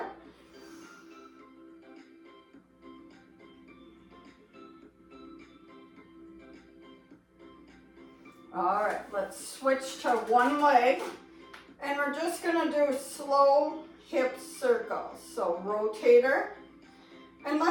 All right, let's switch to one leg, and we're just gonna do slow hip circles. So rotator, And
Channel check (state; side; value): identical; both; correlation 1.00